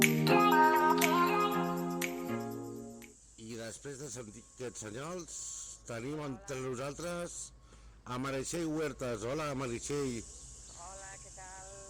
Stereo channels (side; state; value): both; identical; correlation 1.00